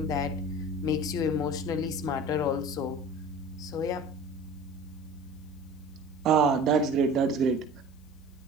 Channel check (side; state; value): both; normal; correlation 0.40